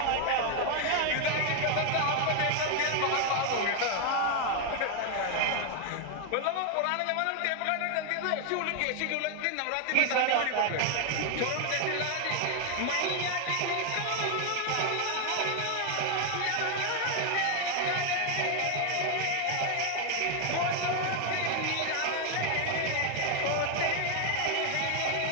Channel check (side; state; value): both; different; correlation 0.00